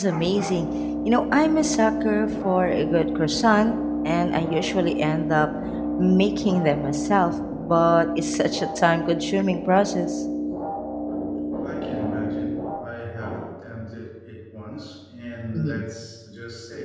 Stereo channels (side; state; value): both; identical; correlation 1.00